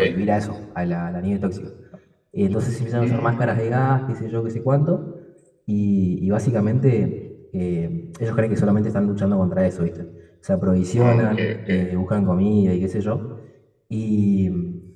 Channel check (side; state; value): both; identical; correlation 1.00